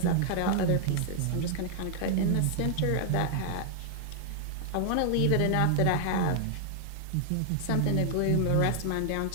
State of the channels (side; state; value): both; different; correlation -0.01